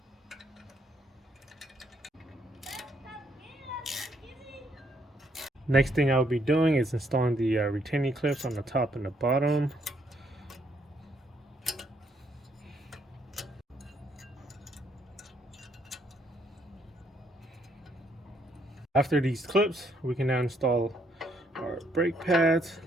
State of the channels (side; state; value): both; normal; correlation 0.72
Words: Next thing I'll be doing is installing the retaining clips on the top and the bottom. After these clips, we can now install our brake pads.